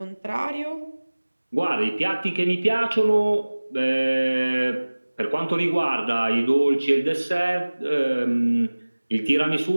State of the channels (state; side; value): inverted; both; correlation -1.00